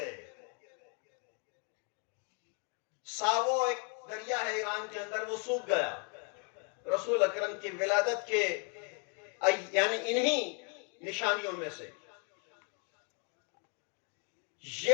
ساوو ایک دریا ہے ایران کے اندر، وہ سوکھ گیا رسول اکرم کی ولادت کے یعنی انہی نشانیوں میں سے۔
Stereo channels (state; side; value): quieter; right; 37.7 dB